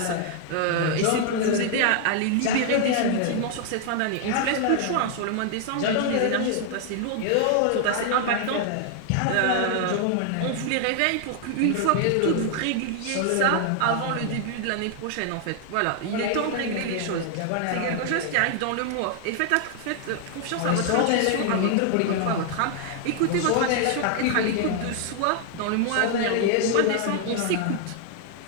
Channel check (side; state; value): both; different; correlation 0.00